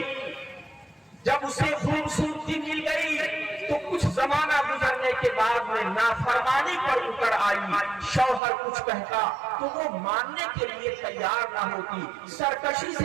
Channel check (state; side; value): drops out; left; at 8.4 s